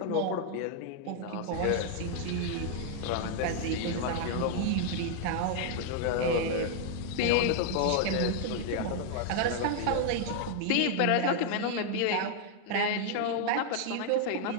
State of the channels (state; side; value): different; both; correlation 0.00